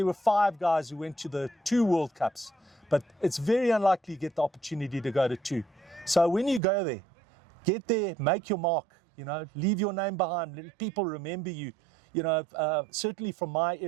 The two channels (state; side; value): drops out; left; at 6.6 s